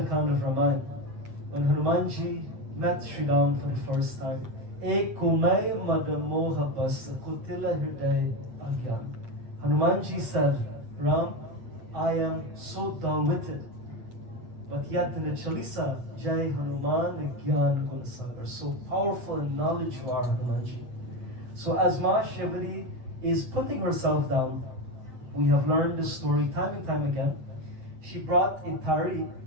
Kand of Ramayana, when Hanumanji met Sri Ram for the first time, Ek kumai madamoha bas kutila hriday agyan. Hanumanji said, Ram, I am so dull-witted. But yet in the Chalisa, Jai Hanuman Gyan Gunsagar, so powerful in knowledge you are, Hanumanji. So as Ma Shivari is putting herself down, we have learned this story time and time again. She brought a thari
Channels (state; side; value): late; left; 8.4 ms